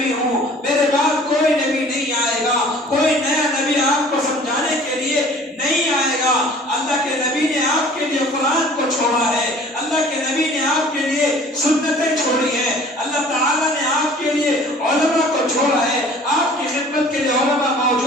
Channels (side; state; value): both; normal; correlation 0.49